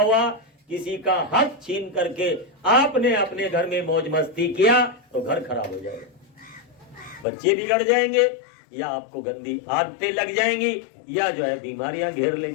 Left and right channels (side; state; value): right; drops out; at 7.2 s